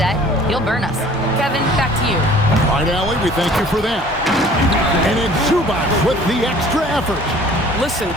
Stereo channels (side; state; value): both; normal; correlation 0.51